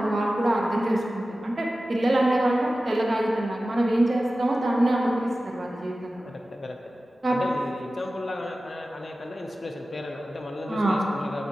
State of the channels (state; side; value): normal; both; correlation 0.95